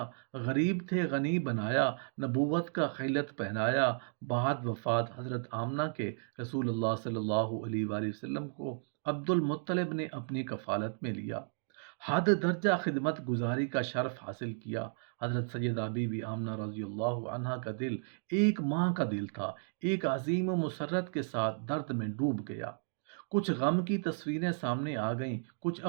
غریب تھے غنی بنایا، نبوت کا خلعت پہنایا۔ بعد وفات حضرت آمنہ کے رسول اللہ صلی اللہ علیہ وآلہ وسلم کو عبد المطلب نے اپنی کفالت میں لیا، حد درجہ خدمت گزاری کا شرف حاصل کیا۔ حضرت سیدہ بی بی آمنہ رضی اللہ عنہا کا دل ایک ماں کا دل تھا، ایک عظیم و مسرت کے ساتھ درد میں ڈوب گیا۔ کچھ غم کی تصویریں سامنے آ گئیں، کچھ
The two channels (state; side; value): silent; left; digital silence